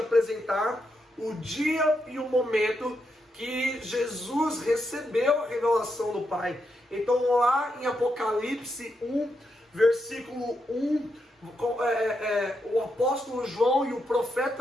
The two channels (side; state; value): both; normal; correlation 0.82